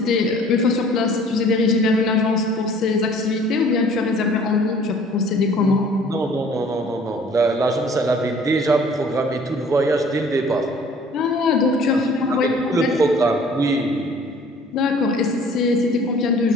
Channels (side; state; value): both; normal; correlation 0.52